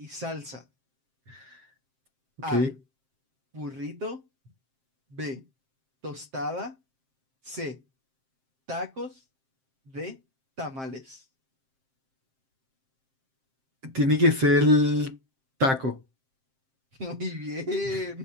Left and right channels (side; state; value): left; late; 7.6 ms